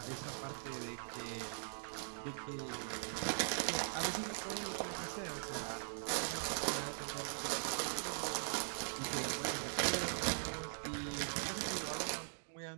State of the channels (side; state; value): left; silent; digital silence